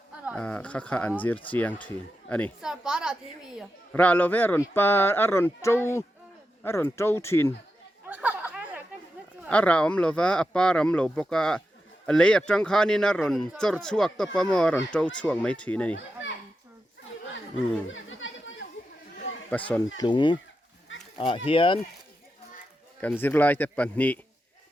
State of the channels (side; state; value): both; normal; correlation 0.88